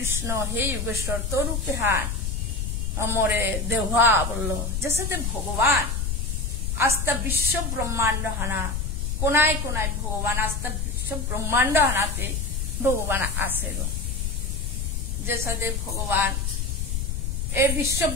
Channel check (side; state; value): left; noise; rumble, 1 dB below the sound